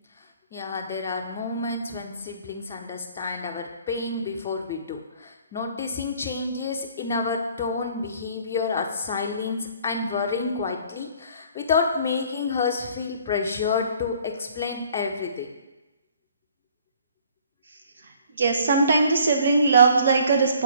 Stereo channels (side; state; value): both; inverted; correlation -0.56